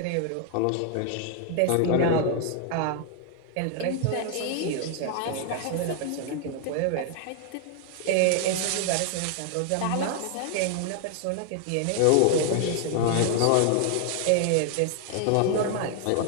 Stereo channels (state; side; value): different; both; correlation 0.00